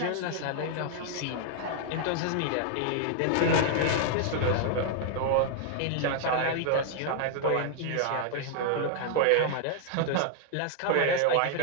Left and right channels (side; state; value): both; different; correlation 0.00